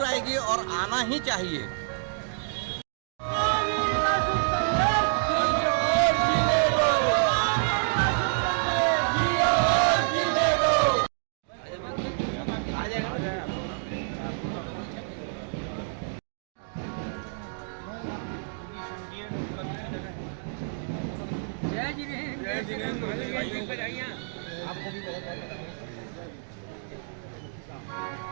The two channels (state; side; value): silent; left; digital silence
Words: आएगी और आना ही चाहिए।